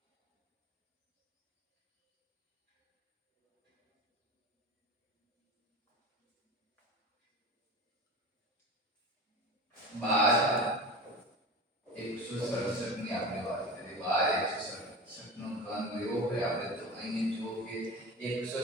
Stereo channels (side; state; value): both; normal; correlation 0.31